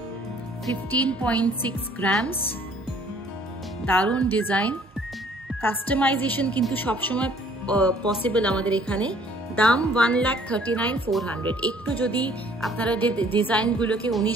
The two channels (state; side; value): normal; both; correlation 0.58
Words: 15.6 গ্রামস, দারুণ ডিজাইন। কাস্টমাইজেশন কিন্তু সবসময় পসিবল আমাদের এখানে। দাম 1,39,400। একটু যদি আপনারা যে ডিজাইনগুলোকে